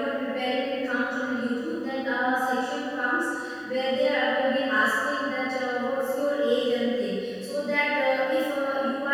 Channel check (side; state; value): both; identical; correlation 1.00